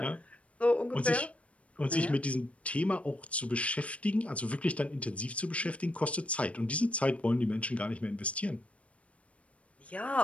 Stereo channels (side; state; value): right; late; 0.064 ms